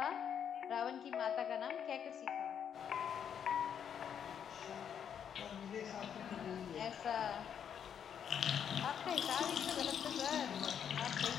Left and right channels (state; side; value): quieter; right; 8.3 dB